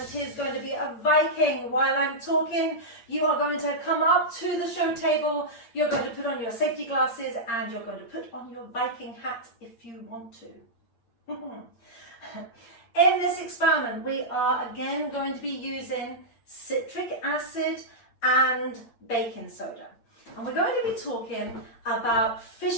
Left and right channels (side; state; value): right; late; 8.7 ms